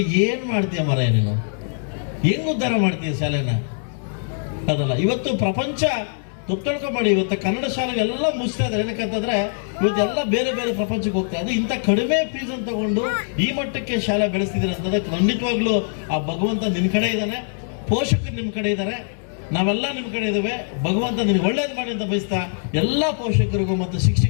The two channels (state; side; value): silent; right; 64 dB below the other